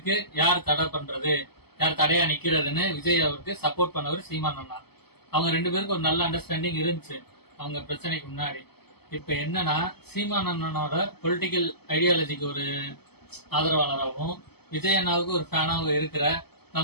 யார் தடை பண்றது, யார் தடையா நிக்கிறதுன்னு விஜய் அவருக்கு சப்போர்ட் பண்ணவர் சீமான் அண்ணா. அவங்க 2 பேருக்கு ஒரு நல்ல அண்டர்ஸ்டாண்டிங் இருந்துச்சு அவங்க பிரச்சனைக்கு முன்னாடி. இப்ப என்னன்னா, சீமான் அண்ணனோட பொலிட்டிக்கல் ஐடியாலஜிக்கு ஒரு ஆதரவாளராகவும் விஜய் அண்ணாவுக்கு ஒரு ஃபேனாகவும் இருக்கிற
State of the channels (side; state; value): right; late; 0.97 ms